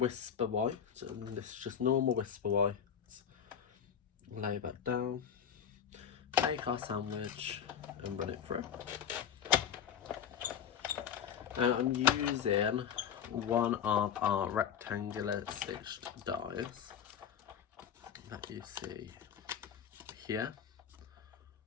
White, and this is just normal Whisper White. Lay that down, take our sandwich and run it through. And I'm using one of our rectangular stitched dies that you see here,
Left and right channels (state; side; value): quieter; right; 8.2 dB